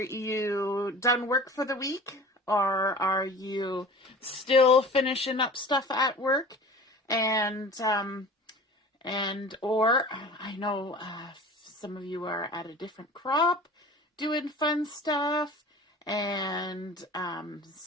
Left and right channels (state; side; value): normal; both; correlation 0.40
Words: done work for the week? Or are you still finishing up stuff at work? Or I know some of you are at a different crop doing fun stuff, and